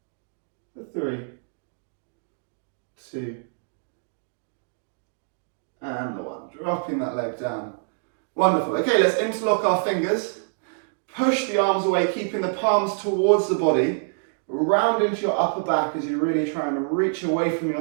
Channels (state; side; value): silent; left; digital silence